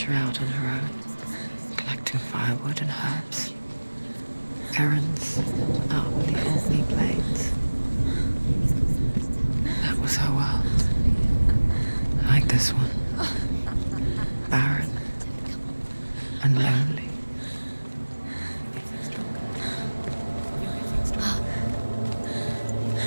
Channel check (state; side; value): inverted; both; correlation -1.00